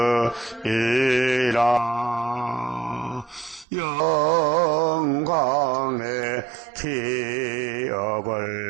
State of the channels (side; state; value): left; drops out; at 3.7 s